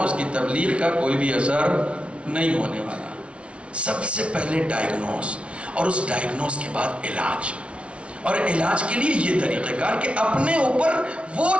اس کی تبلیغ کا کوئی بھی اثر نہیں ہونے والا. سب سے پہلے ڈائگنوز، اور اس ڈائگنوز کے بعد علاج. اور علاج کے لیے یہ طریقہ کار کہ اپنے اوپر وہ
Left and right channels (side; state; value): left; late; 0.060 ms